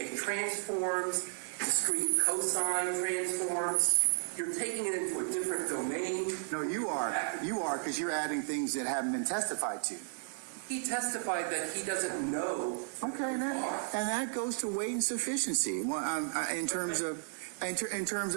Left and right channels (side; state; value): left; silent; 55 dB below the other